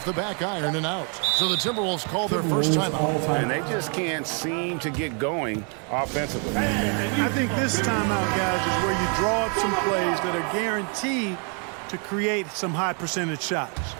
the back iron and out. So the Timberwolves call their first timeout. And they just can't seem to get going offensively. I think this timeout, guys, is where you draw up some plays that are guaranteed to create some high percentage shots.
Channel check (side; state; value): left; quieter; 38.7 dB